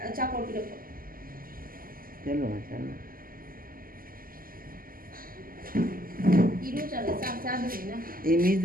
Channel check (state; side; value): late; left; 0.42 ms